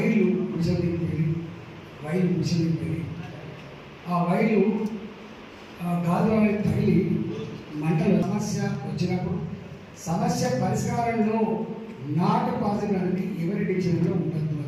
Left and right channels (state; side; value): identical; both; correlation 1.00